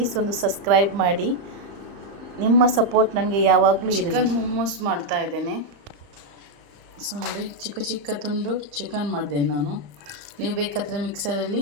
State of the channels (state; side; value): late; left; 35 ms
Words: ಒಂದು ಸಬ್ಸ್ಕ್ರೈಬ್ ಮಾಡಿ. ನಿಮ್ಮ ಸಪೋರ್ಟ್ ನನಗೆ ಯಾವಾಗಲೂ ಇರಲಿ. ಚಿಕನ್ ಮೊಮೋಸ್ ಮಾಡ್ತಾ ಇದ್ದೇನೆ. ಸೊ ನೋಡಿ, ಚಿಕ್ಕ ಚಿಕ್ಕ ತುಂಡು ಚಿಕನ್ ಮಾಡಿದ್ದೇನೆ ನಾನು. ನೀವು ಬೇಕಾದರೆ ಮಿಕ್ಸರಲ್ಲಿ